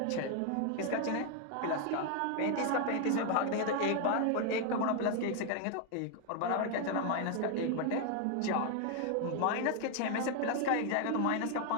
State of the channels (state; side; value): different; both; correlation 0.00